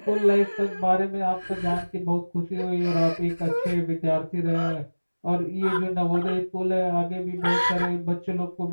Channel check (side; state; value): both; inverted; correlation -1.00